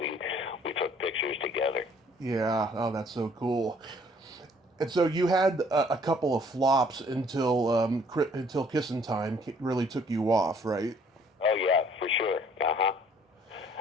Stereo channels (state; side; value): normal; both; correlation 0.60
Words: we took pictures together. Yeah. Oh, that's so cool. And so you had a couple of flops until Kissin' Time really took you off, right? Oh yeah, for sure.